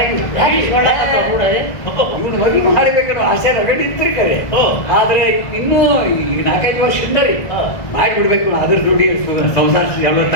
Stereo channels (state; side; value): late; right; 1.6 ms